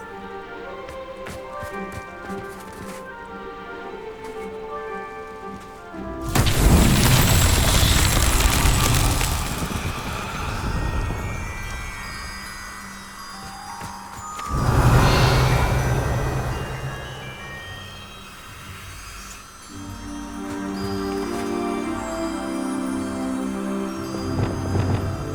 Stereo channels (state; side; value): identical; both; correlation 1.00